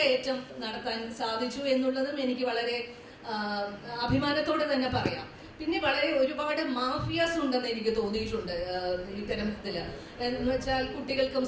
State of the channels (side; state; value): both; identical; correlation 1.00